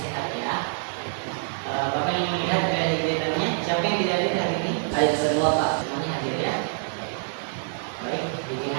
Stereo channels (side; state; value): left; silent; digital silence